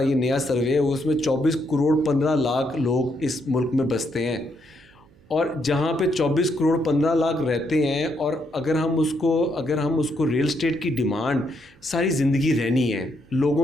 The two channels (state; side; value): noise; right; hum, 29 dB below the sound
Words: یہ نیا سروے ہے, اس میں 24 کروڑ 15 لاکھ لوگ اس ملک میں بستے ہیں, اور جہاں پہ 24 کروڑ 15 لاکھ رہتے ہیں, اور اگر ہم اس کو ریئل اسٹیٹ کی ڈیمانڈ ساری زندگی رہنی ہے.